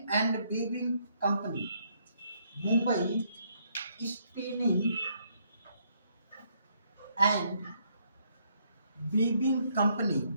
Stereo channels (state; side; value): inverted; both; correlation -0.72